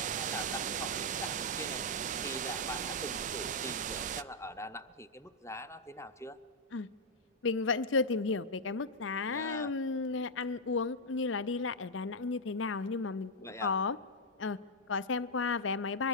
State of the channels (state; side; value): normal; both; correlation -0.04